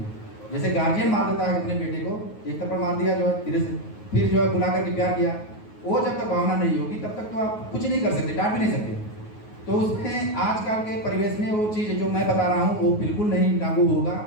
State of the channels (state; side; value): late; right; 9.4 ms